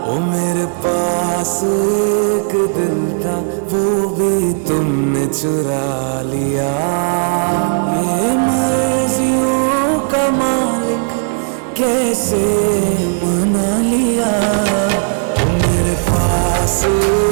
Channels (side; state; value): left; silent; 65 dB below the other